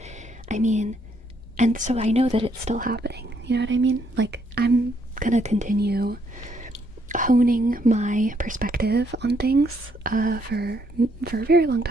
I mean, and so I know that it's still happening. You know what I mean? Like, I'm gonna continue honing my perspective on things for a very long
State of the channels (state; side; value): normal; both; correlation 0.72